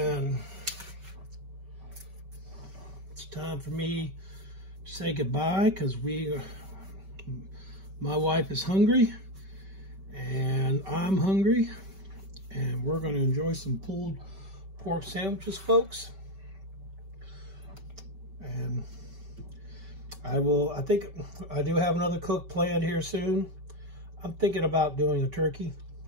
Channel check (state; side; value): late; left; 5.2 ms